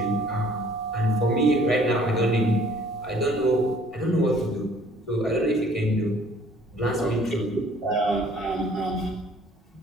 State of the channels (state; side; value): normal; both; correlation 0.57